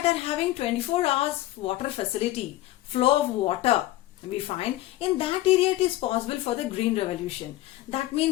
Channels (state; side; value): quieter; right; 16.0 dB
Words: are having 24 hours water facility, flow of water, we find in that area it is possible for the Green Revolution. That